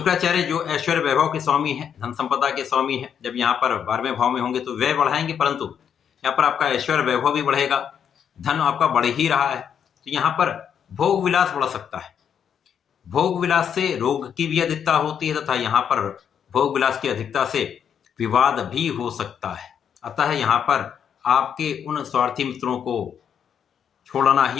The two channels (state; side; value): quieter; right; 8.1 dB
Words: जो ऐश्वर्य वैभव के स्वामी हैं, धन संपदा के स्वामी हैं, जब यहाँ पर 12वें भाव में होंगे तो व्यय बढ़ाएंगे, परंतु यहाँ पर आपका ऐश्वर्य वैभव भी बढ़ेगा, धन आपका बढ़ ही रहा है। तो यहाँ पर भोग विलास बढ़ सकता है। भोग विलास से रोग की भी अधिकता होती है तथा यहाँ पर भोग विलास की अधिकता से विवाद भी हो सकता है। अतः यहाँ पर आपके उन स्वार्थी मित्रों को छोड़ना